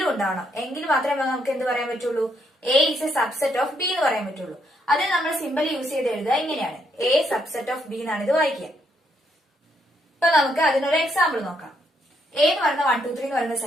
ഉണ്ടാവണം. എങ്കിൽ മാത്രമേ നമുക്ക് എന്ത് പറയാൻ പറ്റുള്ളൂ, A is a subset of B എന്ന് പറയാൻ പറ്റുള്ളൂ. അത് നമ്മൾ സിമ്പിൾ യൂസ് ചെയ്ത് എഴുതുക ഇങ്ങനെയാണ്, എ സബ്സെറ്റ് ഓഫ് ബി എന്നാണ് ഇത് വായിക്കുക. ഇപ്പൊ നമുക്ക് അതിനൊരു എക്സാമ്പിൾ നോക്കാം. എ എന്ന് പറയുന്ന 1, 2, 3 എന്ന് പറയുന്ന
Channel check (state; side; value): normal; both; correlation 0.74